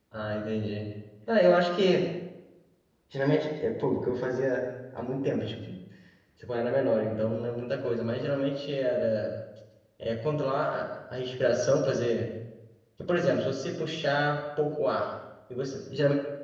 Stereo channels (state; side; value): identical; both; correlation 1.00